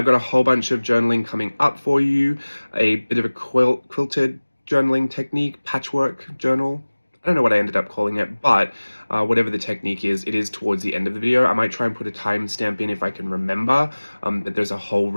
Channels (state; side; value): inverted; both; correlation -1.00